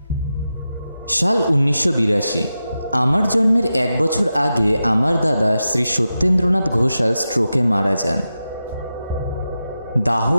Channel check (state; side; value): inverted; both; correlation -0.91